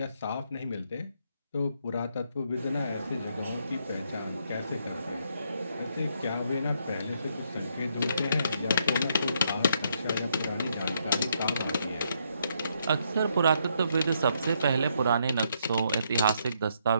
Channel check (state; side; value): inverted; both; correlation -0.74